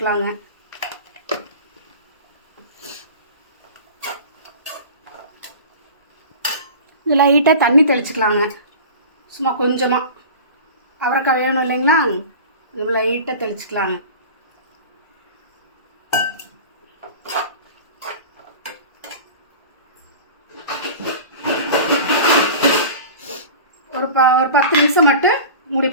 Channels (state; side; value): inverted; both; correlation -0.36